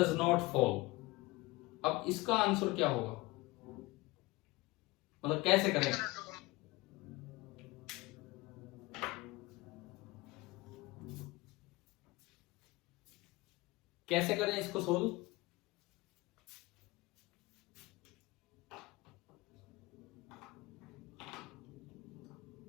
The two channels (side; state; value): right; quieter; 21.6 dB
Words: not fall? अब इसका आंसर क्या होगा, मतलब कैसे करें? कैसे करें इसको सोल्व?